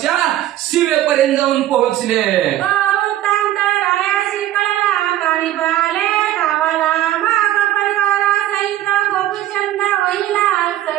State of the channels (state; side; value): quieter; left; 13.4 dB